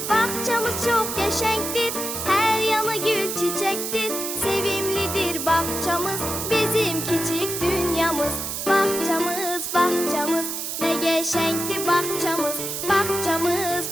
Bağçamız çox qəşəngdir, hər yanı gül çiçəkdir. Sevimlidir bağçamız, bizim kiçik dünyamız. Bağçamız, bağçamız, nə qəşəngdir bağçamız.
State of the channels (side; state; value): right; noise; hiss, 4 dB below the sound